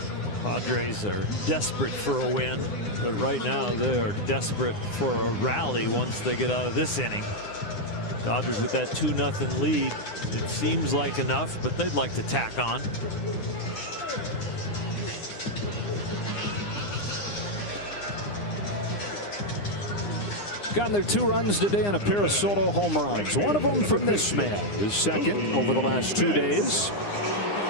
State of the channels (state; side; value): late; right; 9.8 ms